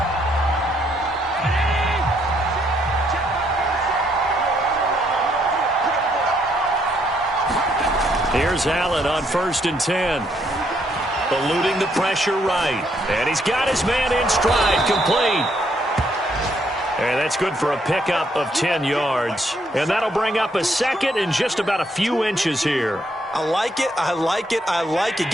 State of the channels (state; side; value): normal; both; correlation 0.72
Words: Here's Allen on 1st and 10. Eluding the pressure right. And he's got his man in stride, complete. And that's good for a pickup of 10 yards. And that'll bring up a second and just about a few inches here. I like it, I like it, I like it.